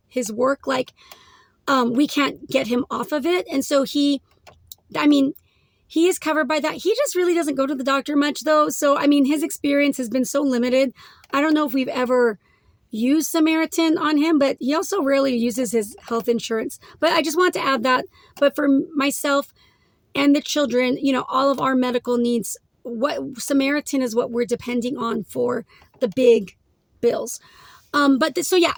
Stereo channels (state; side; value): identical; both; correlation 1.00